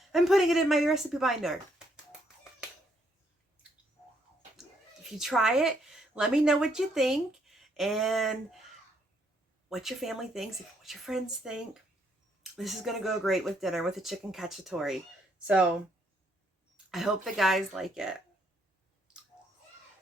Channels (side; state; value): both; normal; correlation 0.71